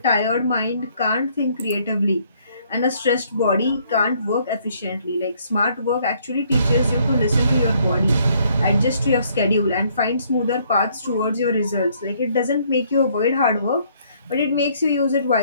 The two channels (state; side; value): inverted; both; correlation -0.66